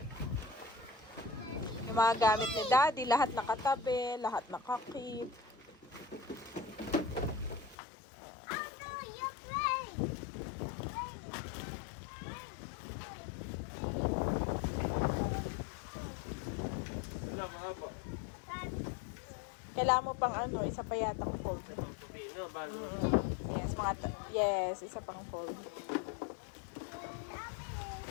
Yung mga gamit ni Daddy, lahat nakatabi, lahat nakakip. Wala, mahaba. Kailangan mo pang ano, isa pa yatang fold. Sa pang tubi, no? Bago. Yes, yes, isa pang fold.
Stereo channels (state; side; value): drops out; right; at 7.8 s